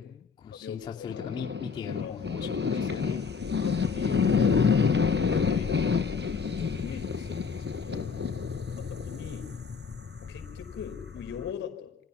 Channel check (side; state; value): right; quieter; 5.6 dB